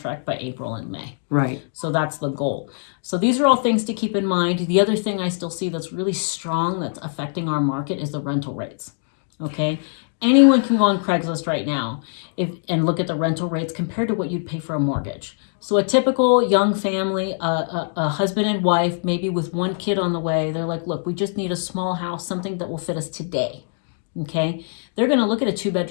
by April and May. Right. So that's the goal. So these are all things to keep in mind. The other thing I still see that's really strong that's affecting our market is the rental rates. Okay. Anyone can go on Craigslist right now and look at the rental rates compared to what you'd pay for a mortgage. So a typical young family, a husband and wife, maybe with one kid on the way, they're like, look, we just need a small house, something that will fit us today. Okay. They're going to look at a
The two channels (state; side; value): silent; right; digital silence